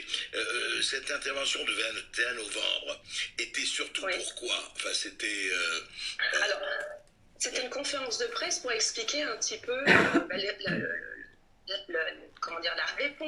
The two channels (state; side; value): identical; both; correlation 1.00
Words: cette intervention du 21 novembre était surtout pourquoi? Enfin, c'était... Alors, c'était une conférence de presse pour expliquer un petit peu la